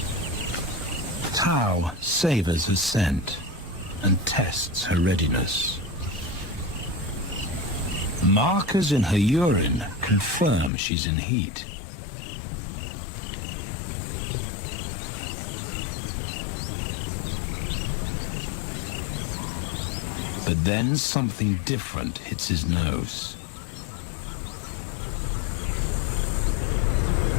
Tau savors her scent and tests her readiness. Markers in her urine confirm she's in heat. But then something different hits his nose.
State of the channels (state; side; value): drops out; right; at 10.7 s